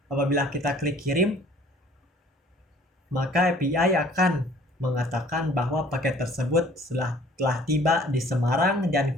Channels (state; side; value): normal; both; correlation 0.54